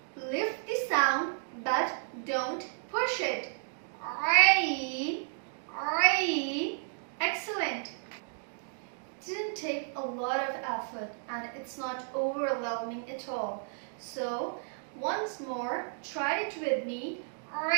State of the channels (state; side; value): silent; left; digital silence